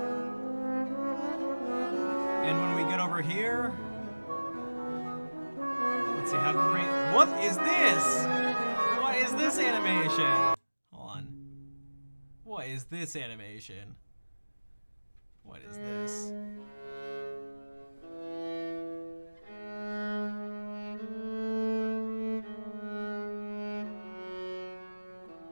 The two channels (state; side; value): inverted; both; correlation -1.00